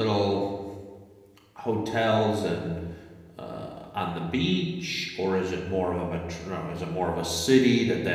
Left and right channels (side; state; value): both; identical; correlation 1.00